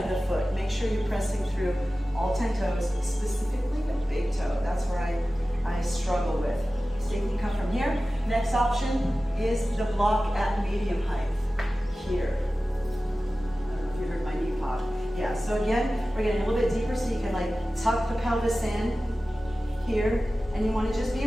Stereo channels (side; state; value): both; normal; correlation 0.96